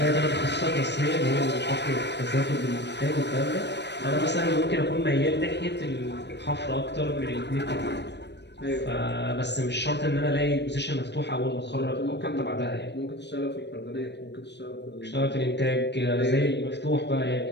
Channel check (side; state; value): right; late; 0.50 ms